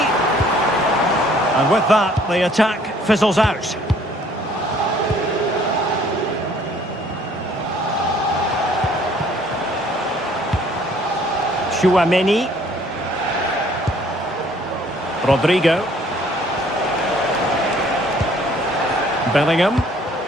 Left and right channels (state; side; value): normal; both; correlation 0.59